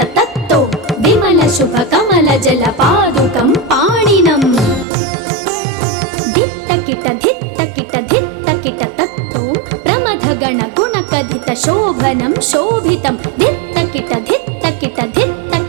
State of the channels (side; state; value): left; drops out; at 4.9 s